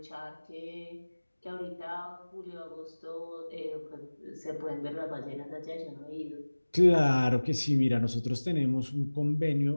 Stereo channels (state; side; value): inverted; both; correlation -1.00